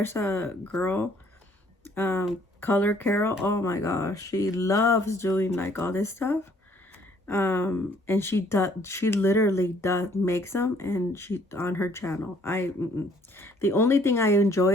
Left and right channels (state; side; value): normal; both; correlation 0.62